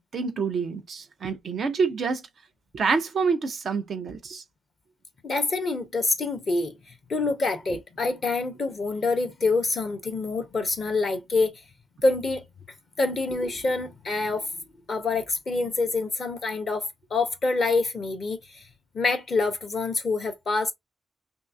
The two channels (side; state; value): both; normal; correlation 0.80